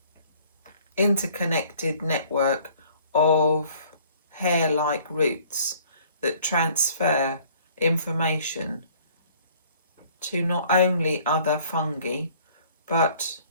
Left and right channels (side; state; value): both; inverted; correlation -0.56